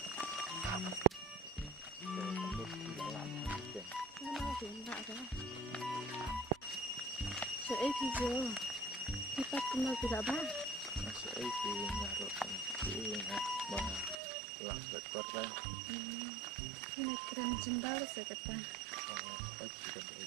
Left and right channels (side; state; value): left; drops out; at 14.2 s